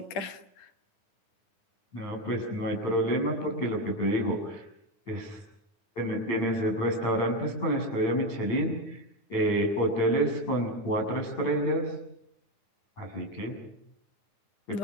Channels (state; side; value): late; right; 8.9 ms